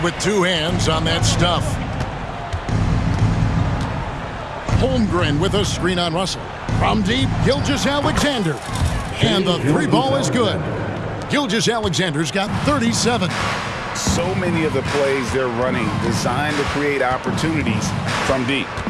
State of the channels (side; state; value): both; identical; correlation 1.00